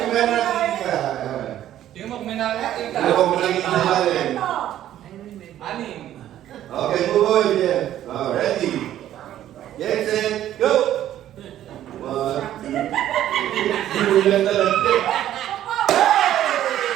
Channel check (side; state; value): left; quieter; 12.1 dB